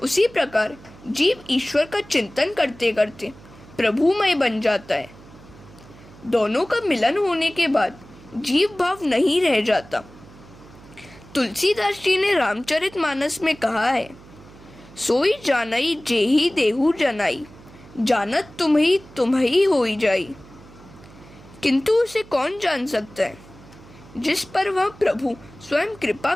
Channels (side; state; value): right; noise; hum, 21 dB below the sound